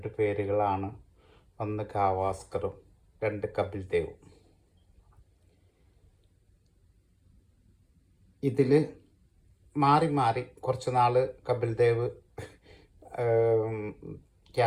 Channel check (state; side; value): identical; both; correlation 1.00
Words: പേരുകളാണ്, ഒന്ന് ഗാവാസ്കറും രണ്ട് കപിൽ ദേവും. ഇതിൽ മാറി മാറി കുറച്ച് നാൾ കപിൽ ദേവ്